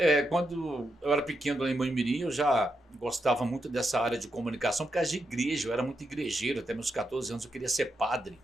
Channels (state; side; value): normal; both; correlation 0.84